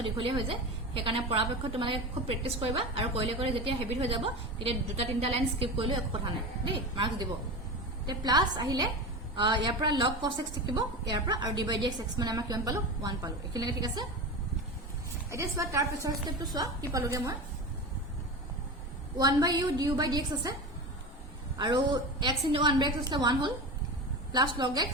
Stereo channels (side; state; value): both; normal; correlation 0.25